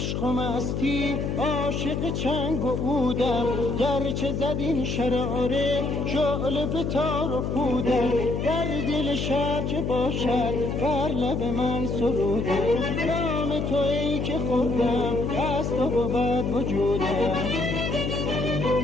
و مستی عاشق چنگ و عودم، گرچه زد این شراره شعله به تار و پودم. در دل شب چه باشد بر لب من سرودم، نام تو ای که خوردم از تو بود وجودم.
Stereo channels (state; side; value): noise; left; hum, 1 dB below the sound